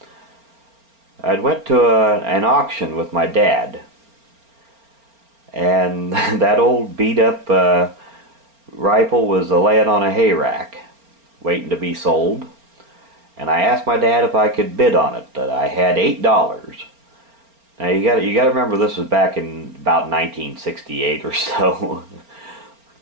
I went to an auction with my dad, and that old beat-up rifle was laying on a hay rack, waiting to be sold. And I asked my dad if I could bid on it. That I had $8. Now you got to remember, this was back in about 1968 or so,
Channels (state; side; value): late; left; 4.4 ms